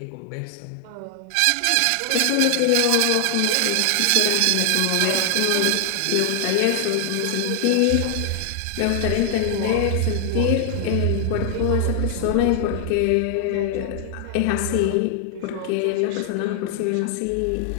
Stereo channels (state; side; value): different; both; correlation 0.00